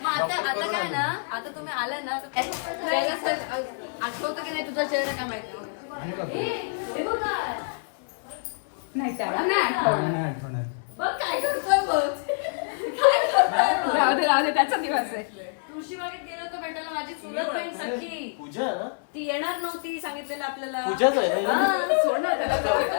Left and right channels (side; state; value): right; silent; 60 dB below the other